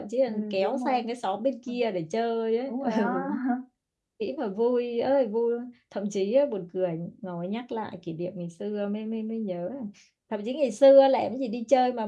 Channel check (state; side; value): identical; both; correlation 1.00